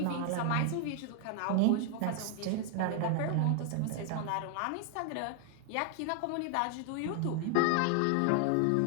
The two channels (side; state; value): both; different; correlation 0.00